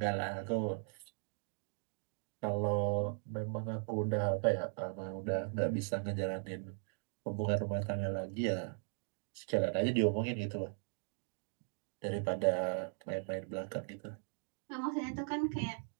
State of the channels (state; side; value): silent; left; 52 dB below the other